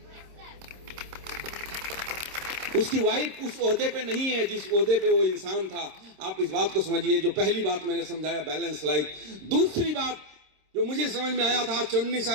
उसकी वाइफ उस ओहदे पे नहीं है जिस ओहदे पे वो इंसान था। आप इस बात को समझिए। जो पहली बात मैंने समझाया, बैलेंस लाइफ। दूसरी बात जो मुझे समझ में आया था आज 19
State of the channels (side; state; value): left; late; 26 ms